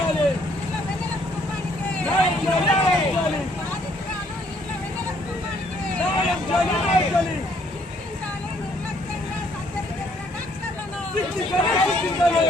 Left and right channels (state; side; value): normal; both; correlation 0.66